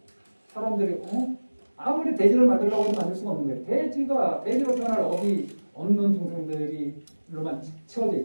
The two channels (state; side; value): inverted; both; correlation -1.00